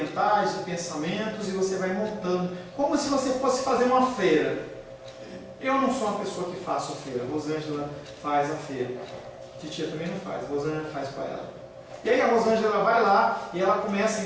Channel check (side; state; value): both; identical; correlation 1.00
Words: de pensamentos, e você vai montando, como se você fosse fazer uma feira. Eu não sou uma pessoa que faço feira, a Rosângela faz a feira, a titia também não faz, a Rosângela faz para ela. E aí a Rosângela vai lá e ela começa a